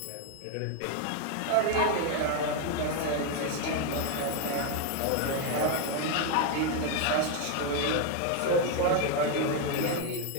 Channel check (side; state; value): both; different; correlation 0.01